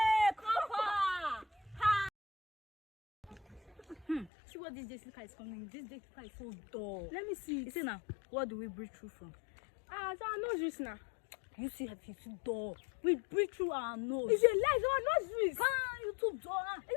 See what this Jessica is coming. This Jessica is so dull. Let me see. You see now, what do we breathe through from? So our nose reach now. You see, it's too dull. We breathe through our nose. It's a lie. It's our nose reach. You too dull.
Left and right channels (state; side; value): drops out; right; at 4.3 s